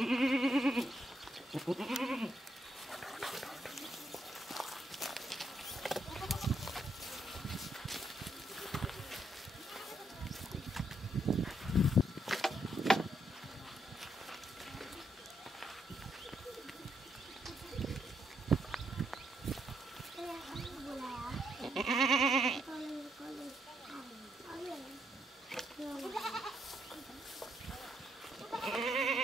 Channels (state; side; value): normal; both; correlation 0.76